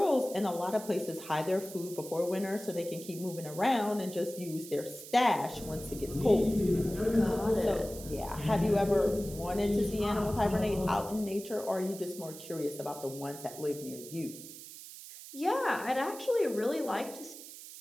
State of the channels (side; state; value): right; noise; hiss, 14 dB below the sound